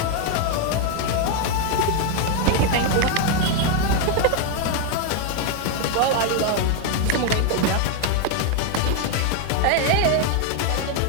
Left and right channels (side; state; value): both; different; correlation 0.01